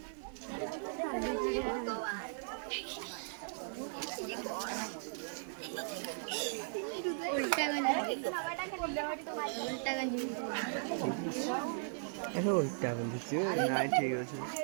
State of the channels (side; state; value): left; silent; 53 dB below the other